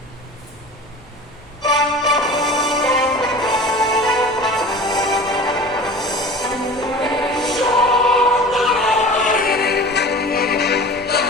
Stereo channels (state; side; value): noise; left; hum, 29 dB below the sound